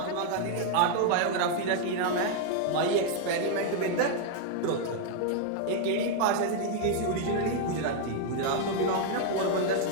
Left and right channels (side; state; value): both; different; correlation 0.00